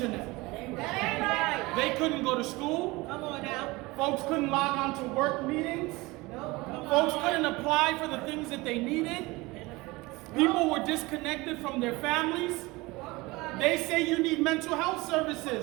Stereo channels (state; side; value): quieter; left; 22.3 dB